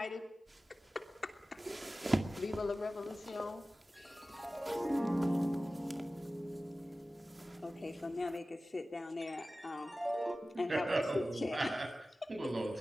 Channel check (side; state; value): both; normal; correlation 0.96